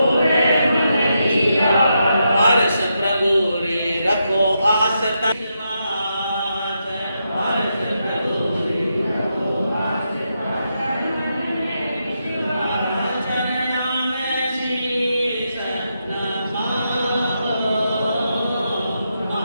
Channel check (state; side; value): inverted; both; correlation -0.84